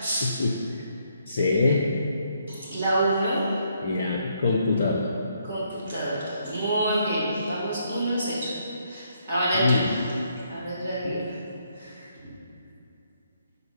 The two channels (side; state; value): both; inverted; correlation -0.73